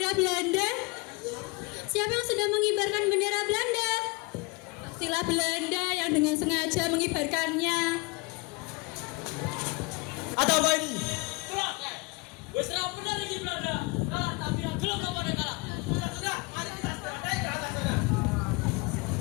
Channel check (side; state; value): right; quieter; 26.6 dB